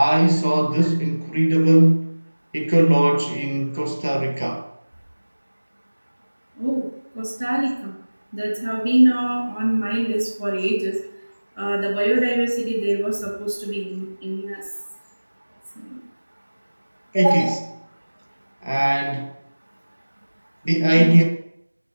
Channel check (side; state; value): both; inverted; correlation -1.00